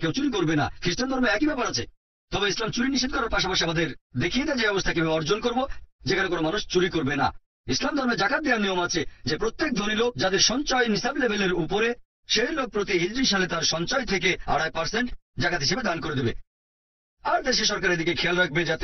কেউ চুরি করবে না। খ্রিস্টান ধর্মে একই ব্যাপার আছে। তবে ইসলাম চুরি নিষেধ করার পাশাপাশি আমাদের দেখিয়ে দেয় যে অবস্থা কিভাবে অর্জন করব, যেখানে কোনো মানুষ চুরি করবে না। ইসলাম ধর্মে জাকাত দেওয়ার নিয়ম আছে যে প্রত্যেক ধনী লোক যাদের সঞ্চয় নিসাব লেভেলের উপরে, সেই লোক প্রতি হিজরি সালে তার সঞ্চয় থেকে 2.5% জাকাত হিসেবে দান করে দেবে। আর দেশে সরকারের দিকে খেয়াল রাখবে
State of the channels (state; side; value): identical; both; correlation 1.00